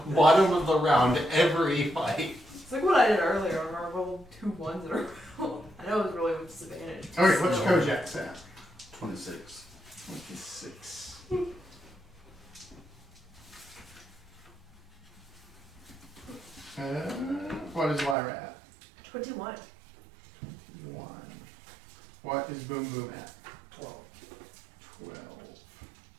bottom of the round every fight. It's like what I did earlier when I rolled 2 1s in a row. I know it was really with disadvantage. Okay, what's So- Kojak's at? 26. 26. What is Lyra at? 21. 1. What is Boom Boom at? 12. 12.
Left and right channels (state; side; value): drops out; left; at 18.2 s